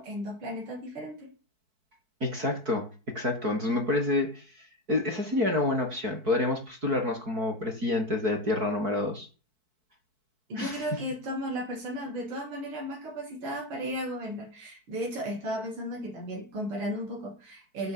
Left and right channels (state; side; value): late; left; 4.6 ms